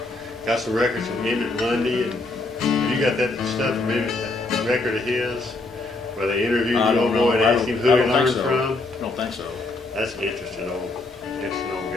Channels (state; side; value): quieter; right; 3.2 dB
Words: got some records from Emmett Lundy, and you got that stuff from Emmett, that record of his, where they interviewed I the don't old know. boy and I asked him don't- who I he don't think learned so. from. I don't think so. That's an interesting old